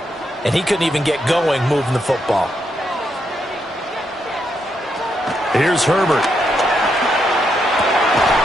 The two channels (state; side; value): normal; both; correlation 0.80